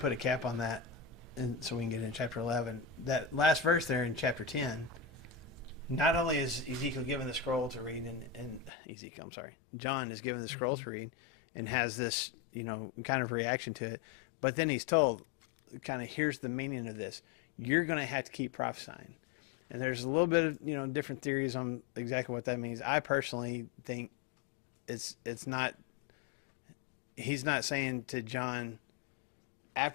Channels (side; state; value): right; drops out; at 8.7 s